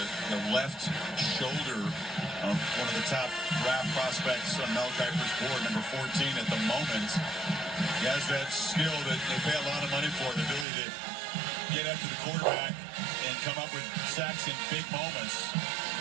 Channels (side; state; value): left; drops out; at 10.7 s